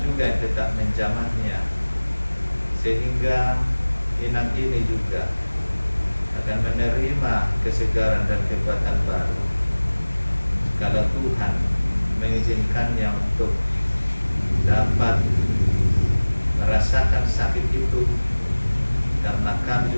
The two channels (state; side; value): inverted; both; correlation -1.00